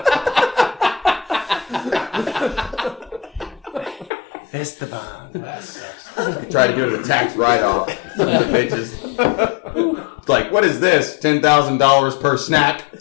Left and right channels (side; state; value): right; drops out; at 4.1 s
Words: Esteban. That sucks. Try to do the tax write-off. Some of the bitches. It's like, what is this? $10,000 per snack.